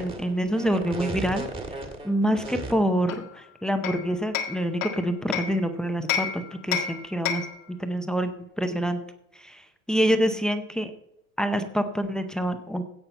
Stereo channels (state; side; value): normal; both; correlation 0.75